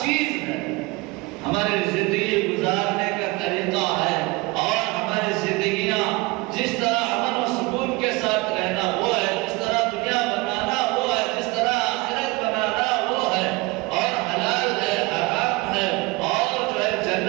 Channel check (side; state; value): left; quieter; 24.0 dB